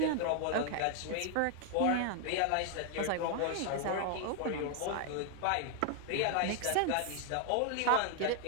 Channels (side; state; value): both; different; correlation 0.00